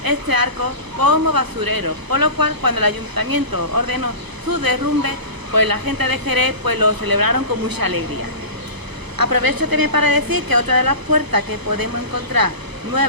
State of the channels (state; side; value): late; left; 1.0 ms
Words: este arco como basurero, por lo cual cuando el ayuntamiento ordenó su derrumbe, pues la gente de Jerez pues lo celebraron con mucha alegría. Aprovecho también para decir que otra de las puertas que podemos encontrar